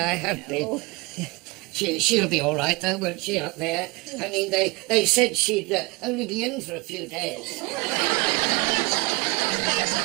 have been. She'll be all right, though, won't she, up there? I mean, they said she'd only be in for a few days.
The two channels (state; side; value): quieter; left; 24.4 dB